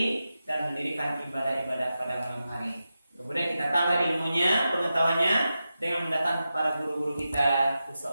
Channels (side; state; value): both; inverted; correlation -0.91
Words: dan mendirikan ibadah-ibadah pada malam hari. Kemudian kita tambah ilmunya, pengetahuannya dengan mendatangkan para guru-guru kita,